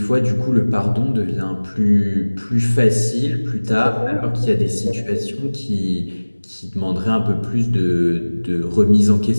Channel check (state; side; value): inverted; both; correlation -1.00